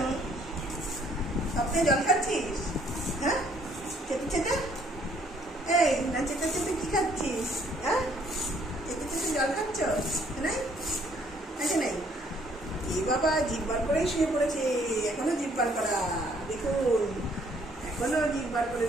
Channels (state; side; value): normal; both; correlation 0.64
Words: স্বপ্নে জল খাচ্ছিস? হ্যাঁ, চেটে চেটে, এই না চেটে চেটে কি খাচ্ছিস? হ্যাঁ, চেটে চেটে জল খাচ্ছ নাই? আছে নাই? এই বাবা জিব্বার করেই শুয়ে পড়েছে, এখনো জিব্বার করা, দেখুন এখনো জিব্বার করে